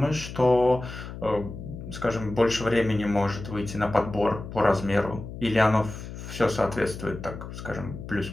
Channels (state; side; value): noise; left; hum, 10 dB below the sound